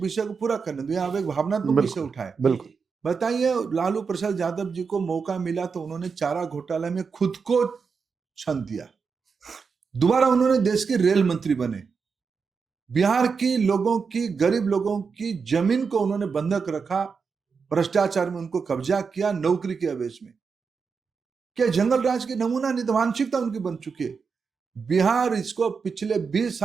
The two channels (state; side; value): quieter; left; 5.4 dB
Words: विषय को पूरा करने दूं, आप एक भावनात्मक विषय उठाए। बिल्कुल। बताइए, लालू प्रसाद यादव जी को मौका मिला तो उन्होंने चारा घोटाला में खुद को छंद दिया, दोबारा उन्होंने देश के रेल मंत्री बने, बिहार की लोगों की, गरीब लोगों की जमीन को उन्होंने बंधक रखा, भ्रष्टाचार में उनको कब्जा किया, नौकरी के आवेश में। क्या जंगल राज के नमूना नहीं, तो मानसिकता उनकी बन चुकी है। बिहार इसको पिछले 20